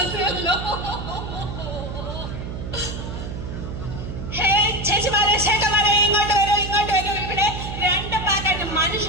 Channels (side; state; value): right; noise; hum, 7 dB below the sound